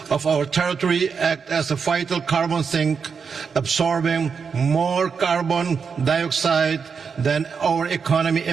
of our territory, act as a vital carbon sink, absorbing more carbon dioxide than our economy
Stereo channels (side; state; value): left; quieter; 5.9 dB